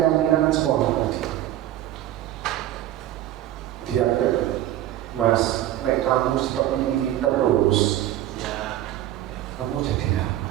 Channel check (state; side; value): quieter; left; 13.3 dB